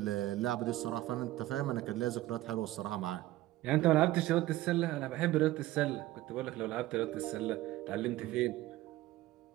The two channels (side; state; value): left; quieter; 16.4 dB